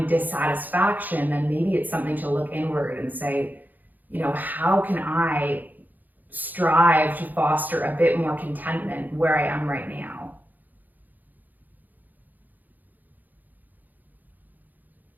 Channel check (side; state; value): left; late; 0.084 ms